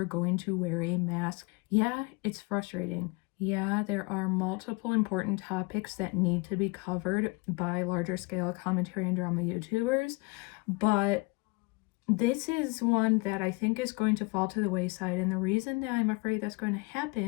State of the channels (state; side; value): quieter; right; 27.3 dB